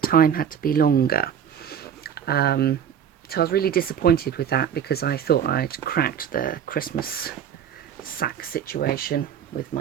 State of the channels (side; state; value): left; quieter; 8.6 dB